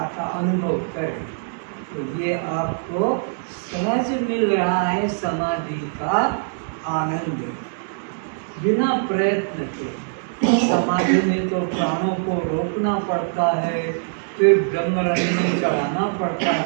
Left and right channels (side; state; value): left; silent; digital silence